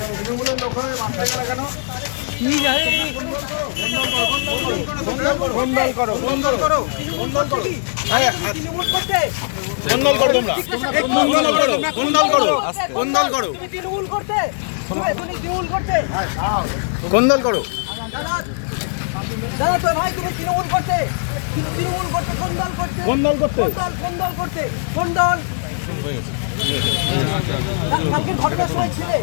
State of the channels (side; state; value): right; silent; digital silence